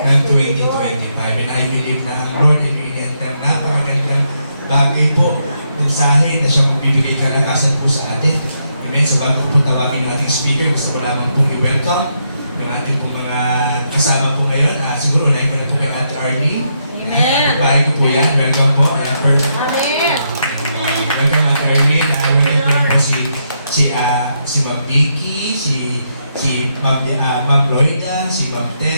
2025. And I believe na ang Lord and Enter napakagandang bagay po, mensahe na siyang magbibigay kalakasan po sa atin. Amen. So bago po tawagin ng ating speaker, gusto ko lamang pong i-welcome yung ating pong mga kasama po ngayon. Siguro unahin ko na po kay Ate Arlene. Amen. Bahay ko po yan. Welcome po. Amen. Welcome Ate Arlene. Welcome po po si Ma'am Vicky, si Ma'am Lloyda, si Ma'am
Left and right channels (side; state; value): both; inverted; correlation -0.80